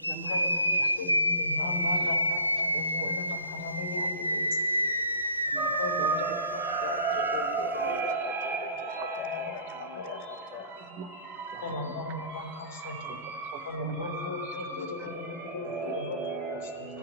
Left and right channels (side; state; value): both; inverted; correlation -0.46